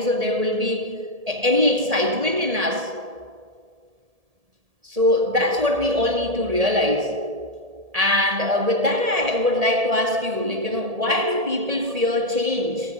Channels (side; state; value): left; late; 1.7 ms